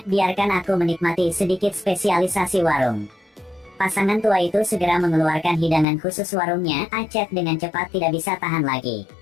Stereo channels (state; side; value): drops out; right; at 5.9 s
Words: biarkan aku menikmati sedikit spesialisasi warung. Pasangan tua itu segera mengeluarkan hidangan khusus warungnya, Acet dengan cepat tidak bisa tahan lagi.